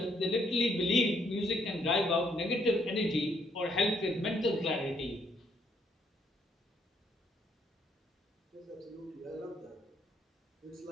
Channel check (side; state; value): both; normal; correlation 0.71